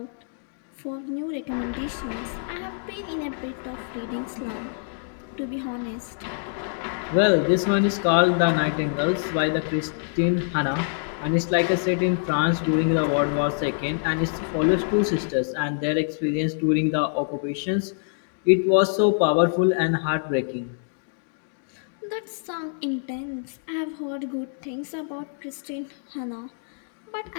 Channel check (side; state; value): right; silent; digital silence